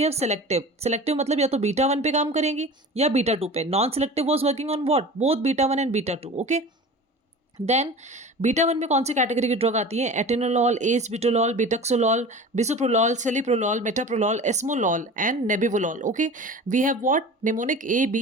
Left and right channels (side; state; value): both; normal; correlation 0.37